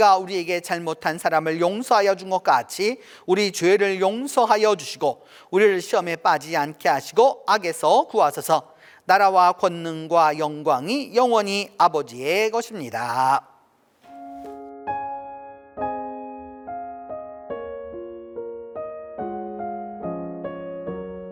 우리에게 잘못한 사람을 용서하여 준 것 같이 우리 죄를 용서하여 주시고 우리를 시험에 빠지지 않게 하시고 악에서 구하소서. 나라와 권능과 영광이 영원히 아버지의 것입니다.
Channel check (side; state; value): both; identical; correlation 1.00